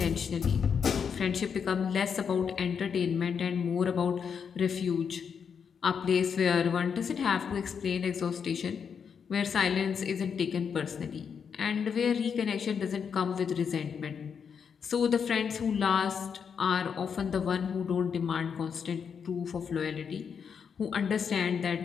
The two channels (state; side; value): quieter; right; 6.8 dB